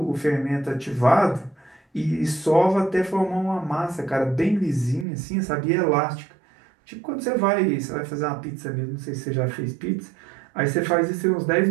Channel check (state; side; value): drops out; left; at 5.1 s